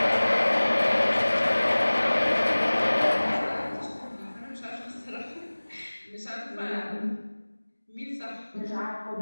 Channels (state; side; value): inverted; both; correlation -1.00